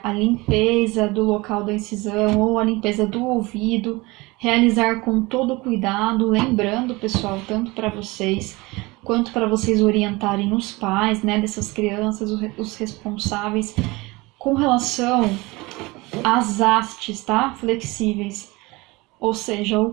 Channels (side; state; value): left; quieter; 22.9 dB